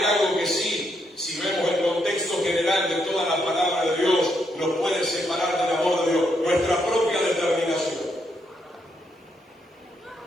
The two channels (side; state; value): both; normal; correlation 0.77